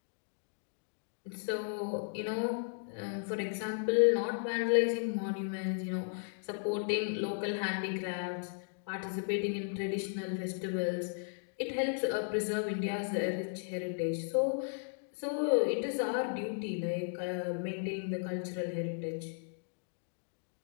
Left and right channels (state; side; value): silent; right; digital silence